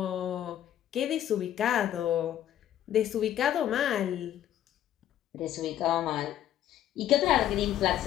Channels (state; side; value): quieter; right; 11.6 dB